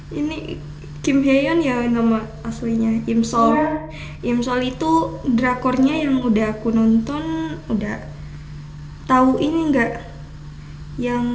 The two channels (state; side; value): identical; both; correlation 1.00